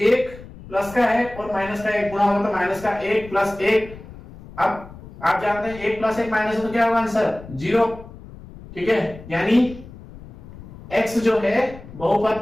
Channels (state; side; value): noise; left; rumble, 17 dB below the sound